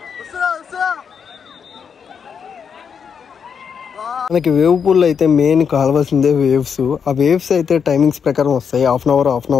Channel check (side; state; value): right; quieter; 6.8 dB